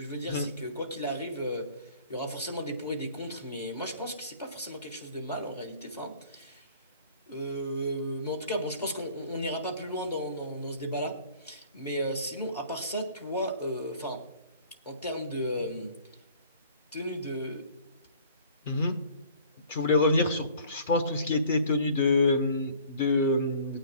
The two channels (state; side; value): inverted; both; correlation -0.51